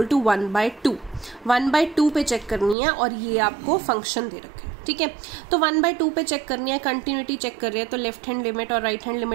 to 1/2, 1/2 पे चेक करनी है और ये आपको फंक्शन दे रखे हैं, ठीक है। तो 1/2 पे चेक करनी है, कंटिन्यूटी चेक कर रहे हैं, तो लेफ्ट हैंड लिमिट और राइट हैंड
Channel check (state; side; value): drops out; left; at 2.8 s